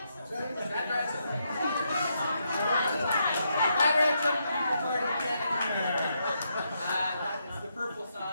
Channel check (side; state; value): both; inverted; correlation -0.80